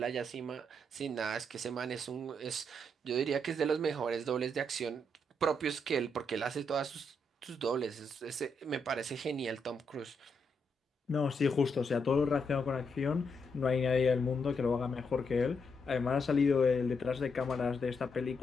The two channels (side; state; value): both; normal; correlation 0.79